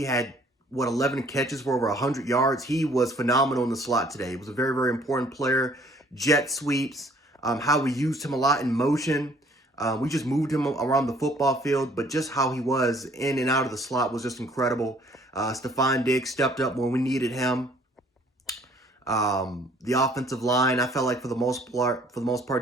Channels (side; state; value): both; normal; correlation 0.59